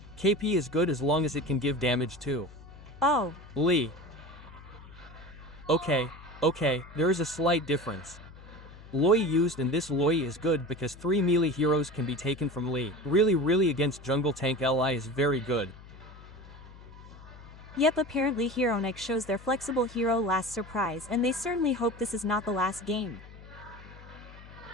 KP is good as long as it can give damage too. Oh. Lee. Okay, there is a slight difference. Loi used, and this Loi is good because 3 melee heroes can be taken from Lee. Really against jungle tank Li is very good. Yep, apparently Heronic shows their flexible hero last surprise, and they certainly hope this is not the last game.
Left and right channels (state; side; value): noise; left; hum, 18 dB below the sound